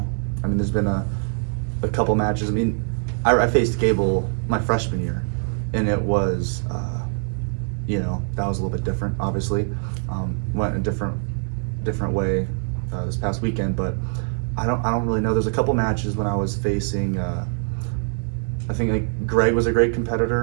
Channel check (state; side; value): silent; left; 63 dB below the other